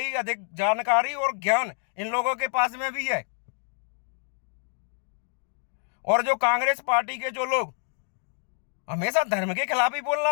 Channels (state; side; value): silent; right; 60 dB below the other